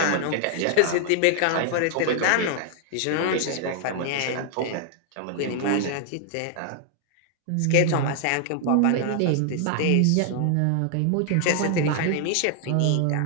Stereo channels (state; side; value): different; both; correlation 0.00